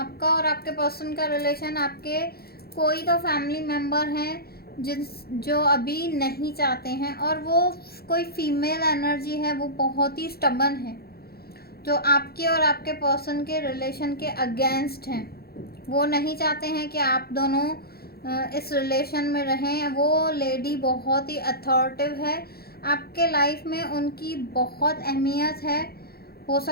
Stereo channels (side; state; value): right; late; 0.45 ms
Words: और आपके पर्सन का रिलेशन, आपके कोई तो फैमिली मेम्बर हैं जो अभी नहीं चाहते हैं, और वो कोई फीमेल एनर्जी है, वो बहुत ही स्टबर्न है, जो आपके और आपके पर्सन के रिलेशन के अगेंस्ट हैं। वो नहीं चाहते हैं कि आप दोनों इस रिलेशन में रहें। वो लेडी बहुत ही अथॉरिटिव है, आपके लाइफ में उनकी बहुत अहमियत है। हो